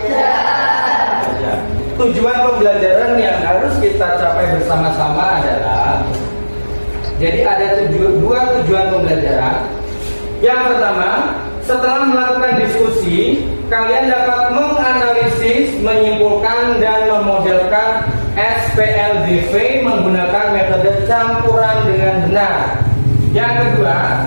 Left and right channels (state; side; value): inverted; both; correlation -1.00